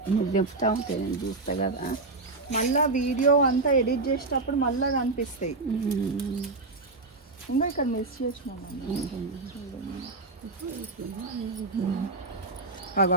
మీరు చెప్తా ఉంటే నేను చూస్తా కదా. మళ్ళీ వీడియో అంతా ఎడిట్ చేసేటప్పుడు మళ్ళీ కనిపిస్తాయి. ఇంకా ఇక్కడ మిస్ చేసినాం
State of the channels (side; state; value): left; quieter; 3.4 dB